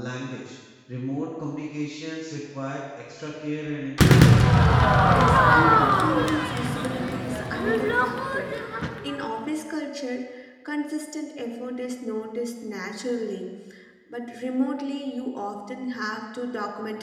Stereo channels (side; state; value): both; identical; correlation 1.00